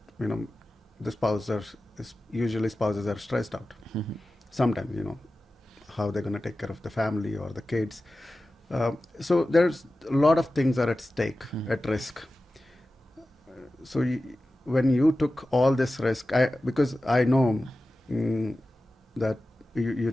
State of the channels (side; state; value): both; normal; correlation 0.95